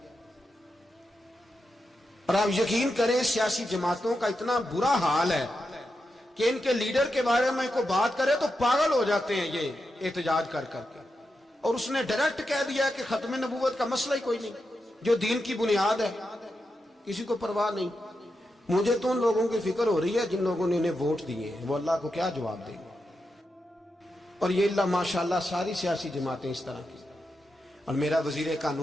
और आप यकीन करें सियासी जमातों का इतना बुरा हाल है कि इनके लीडर के बारे में कोई बात करे तो पागल हो जाते हैं ये एहतजाज कर करके। और उसने डायरेक्ट कह दिया कि खत्म नबूवत का मसला ही कोई नहीं, जो दीन की बुनियाद है, किसी को परवाह नहीं। मुझे तो उन लोगों की फिक्र हो रही है जिन लोगों ने इन्हें वोट दिए हैं, वो अल्लाह को क्या जवाब देंगे। और ये अल्लाह माशाल्लाह सारी सियासी जमातें इस तरह की। और मेरा वजीर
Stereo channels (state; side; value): normal; both; correlation 0.87